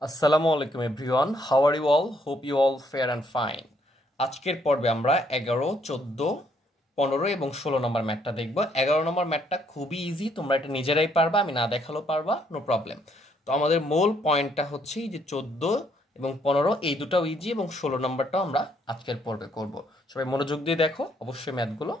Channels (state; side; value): normal; both; correlation 0.69